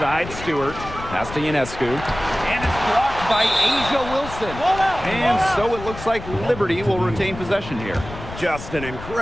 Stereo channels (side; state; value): left; noise; rumble, 12 dB below the sound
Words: Stewart. Pass to Ionescu. And it's blocked by Asia Wilson. And so it looks like Liberty will retain possession here. Just an